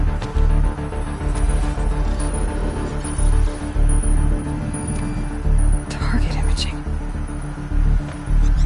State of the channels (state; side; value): identical; both; correlation 1.00